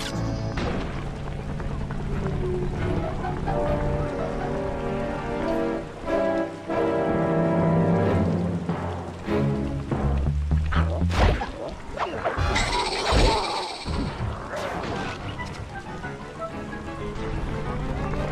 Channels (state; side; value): identical; both; correlation 1.00